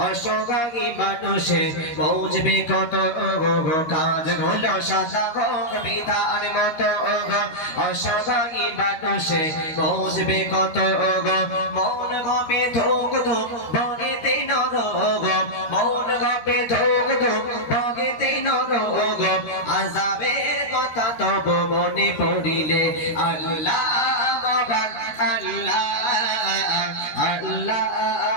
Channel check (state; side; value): late; right; 13 ms